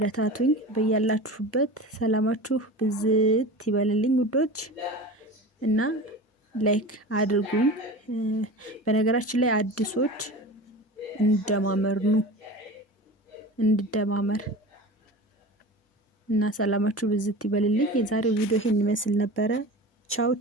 በያላችሁበት ሰላማችሁ ብዝት ይበልልኝ ውዶች እና ላይክ አድርጉኝ። በነገራችን ላይ አዲሶች እንደማመር እና ሰላማችሁ ብዝት ይበልልኝ። የዛሬው ቪዲዮ ይሄን ይመስል ነበረ። ቻው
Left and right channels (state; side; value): normal; both; correlation 0.33